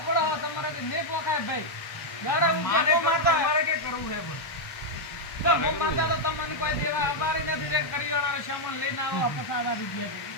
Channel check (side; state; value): right; late; 1.2 ms